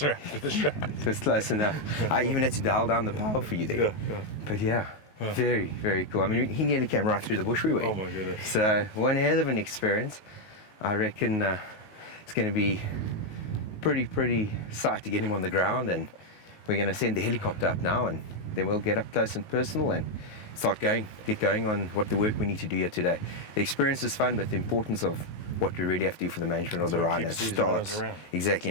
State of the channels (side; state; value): right; late; 19 ms